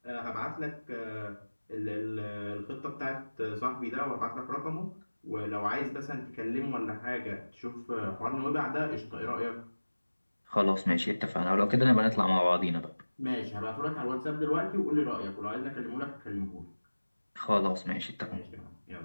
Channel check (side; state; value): both; inverted; correlation -1.00